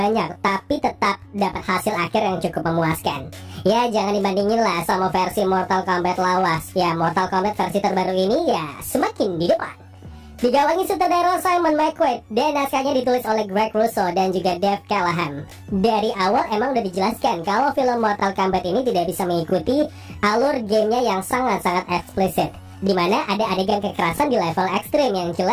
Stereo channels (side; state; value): both; identical; correlation 1.00